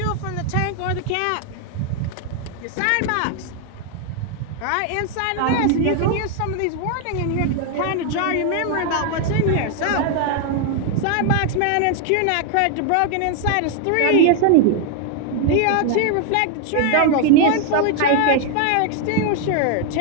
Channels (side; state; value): both; different; correlation 0.00